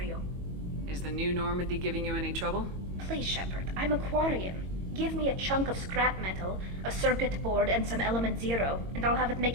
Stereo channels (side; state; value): left; late; 22 ms